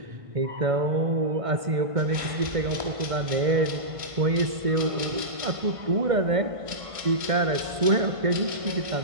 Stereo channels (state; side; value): late; left; 1.5 ms